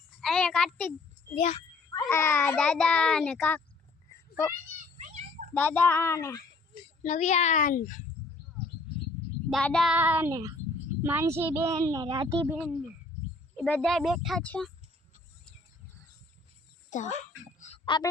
આયા કાર્તિક, આ દાદા અને દાદા અને નવ્યાન, દાદા ને માનસીબેન ને રાધીબેન ને એ બધા બેઠા છે। તો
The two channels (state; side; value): quieter; right; 3.5 dB